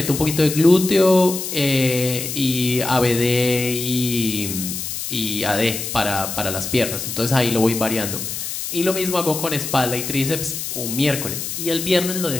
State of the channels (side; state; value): left; noise; hiss, 5 dB below the sound